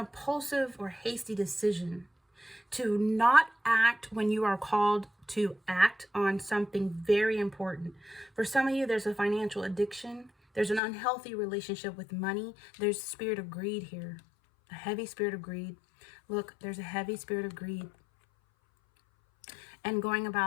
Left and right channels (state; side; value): drops out; right; at 10.8 s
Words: or hasty decision to not act when you are called to act on something very important. For some of you, there's a financial addiction. There's an unhealthy relationship with money. There's a spirit of greed here, a heavy spirit of greed. Look, there's a heavy spirit of greed. And going